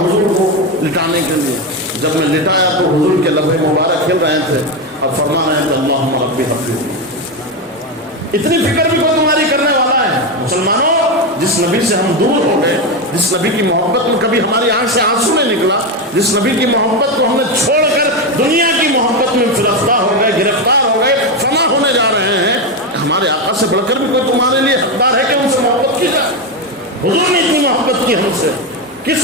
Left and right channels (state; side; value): normal; both; correlation 0.12